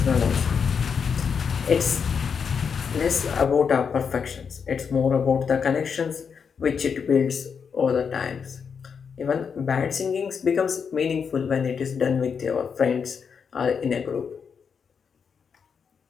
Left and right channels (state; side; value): quieter; right; 6.4 dB